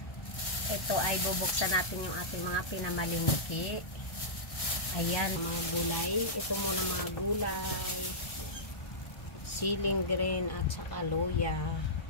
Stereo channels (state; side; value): late; right; 1.3 ms